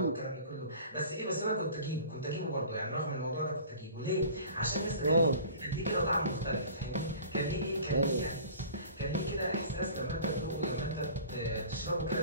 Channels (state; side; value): inverted; both; correlation -0.43